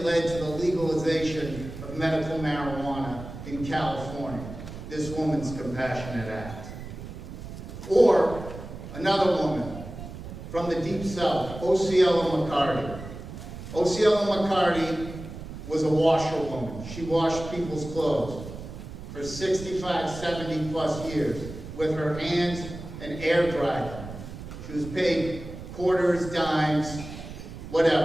led to the legalization of medical marijuana in California, this woman's compassionate act. Or another woman from the Deep South, Osceola McCarty. Osceola McCarty was a washerwoman. She washed people's clothes for 65, 70 plus years with her hands and air dried them. She was paid quarters, dimes,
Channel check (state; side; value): noise; right; rumble, 11 dB below the sound